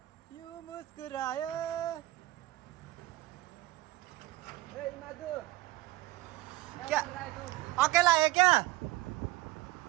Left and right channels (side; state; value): left; quieter; 18.2 dB